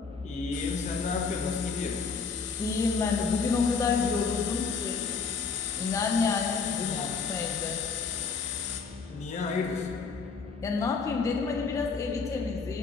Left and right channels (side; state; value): right; quieter; 5.1 dB